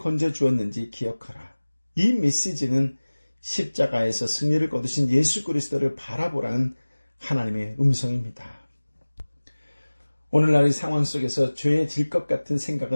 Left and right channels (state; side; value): inverted; both; correlation -1.00